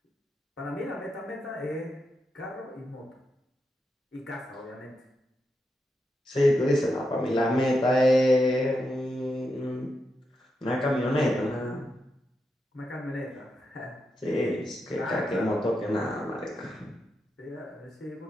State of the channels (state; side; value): normal; both; correlation 0.85